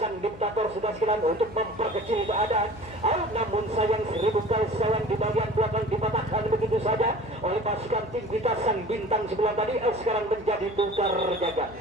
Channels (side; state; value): left; noise; hum, 17 dB below the sound